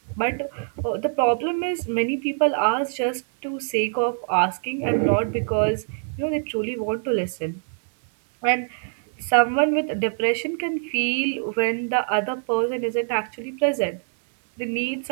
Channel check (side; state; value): left; silent; digital silence